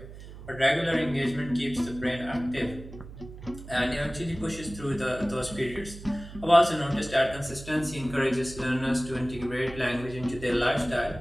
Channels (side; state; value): right; noise; hum, 14 dB below the sound